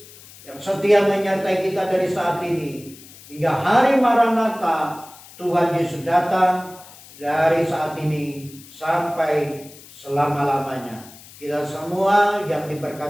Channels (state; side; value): noise; left; hiss, 20 dB below the sound